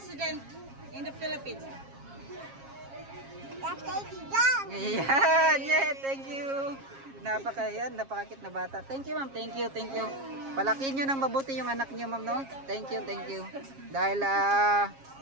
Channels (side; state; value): left; late; 7.4 ms